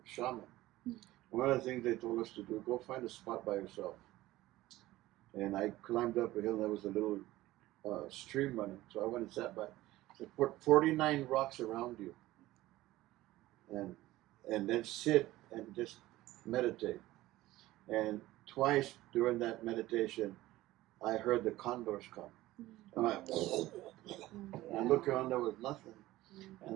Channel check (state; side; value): quieter; left; 16.9 dB